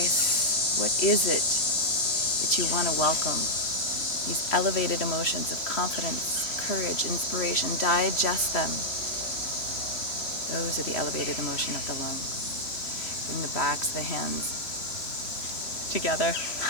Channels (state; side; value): late; right; 3.0 ms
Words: What is it that you want to welcome? These elevated emotions of confidence, courage, inspiration, digest them. Those are the elevated emotion of the lungs. Bring the backs of the hands together.